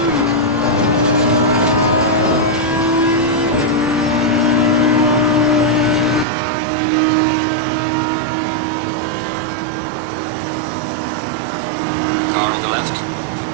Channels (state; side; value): drops out; left; at 6.2 s